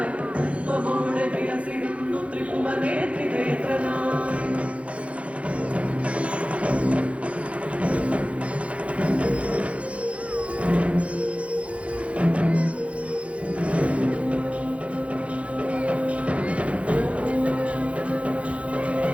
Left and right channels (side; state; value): left; late; 0.063 ms